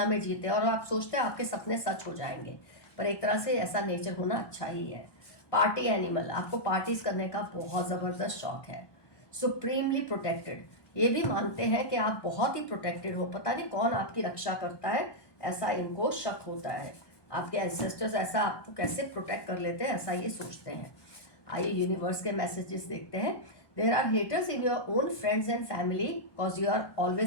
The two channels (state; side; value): late; right; 1.2 ms